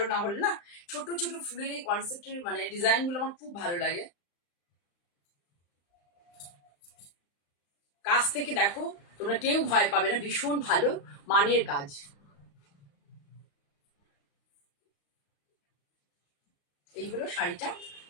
না হলে না, ছোট ছোট ফুলের এই কনসেপ্টের মানে ডিজাইন গুলো আমার খুব ভালো লাগে। কাছ থেকে দেখো, তোমরা কেউ ভয় পাবে না, ভীষণ ভালো মানের কাজ। এই হলো শাড়িটা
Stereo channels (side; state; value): right; late; 35 ms